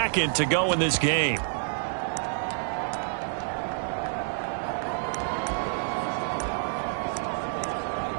to go in this game.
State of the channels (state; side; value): silent; left; digital silence